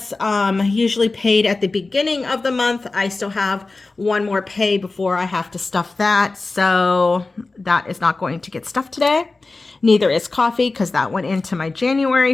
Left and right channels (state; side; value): quieter; right; 3.5 dB